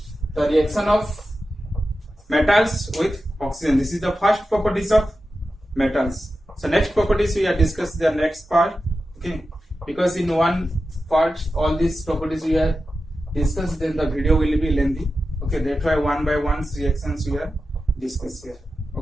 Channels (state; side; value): normal; both; correlation 0.92